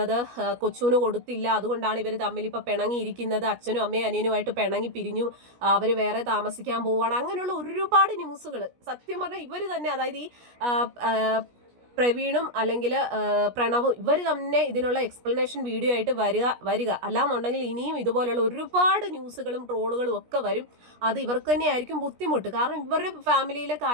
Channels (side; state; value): left; late; 17 ms